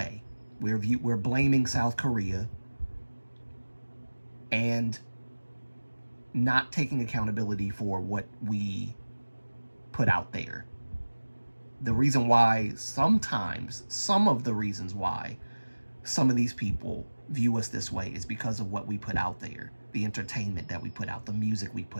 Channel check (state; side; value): inverted; both; correlation -1.00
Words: We're blaming South Korea and not taking accountability for what we put out there. The reason why sometimes, some of the reasons why some of these people view us this way is because of what we put out there, the entertainment that we put out, the music we